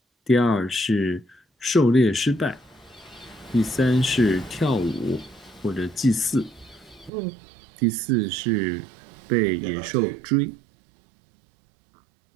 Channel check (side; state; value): left; drops out; at 7.1 s